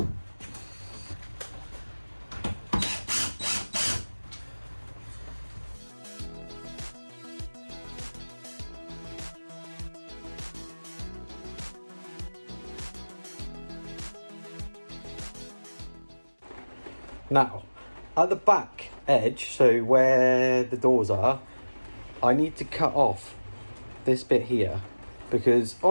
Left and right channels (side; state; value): both; inverted; correlation -1.00